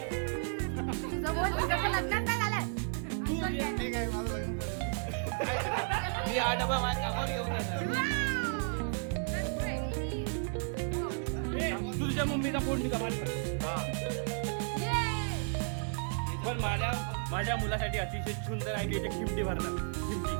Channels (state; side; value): silent; left; 56 dB below the other